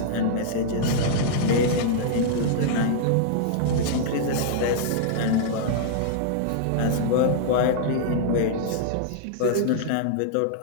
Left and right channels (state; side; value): different; both; correlation -0.02